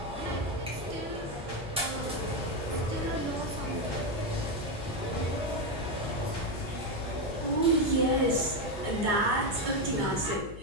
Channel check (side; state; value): left; noise; hum, 13 dB below the sound